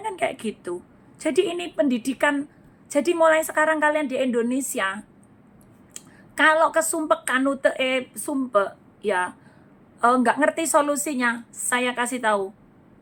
kan kayak gitu. Jadi ini pendidikan. Jadi mulai sekarang kalian di Indonesia, kalau kesumpek kanute sumpek ya, nggak ngerti solusinya, saya kasih tahu.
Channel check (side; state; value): both; identical; correlation 1.00